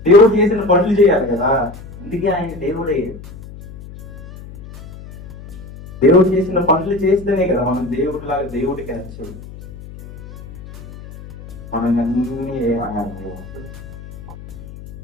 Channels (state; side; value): noise; left; hum, 16 dB below the sound